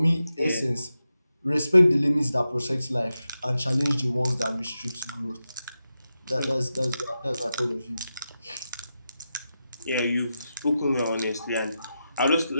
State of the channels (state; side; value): inverted; both; correlation -0.90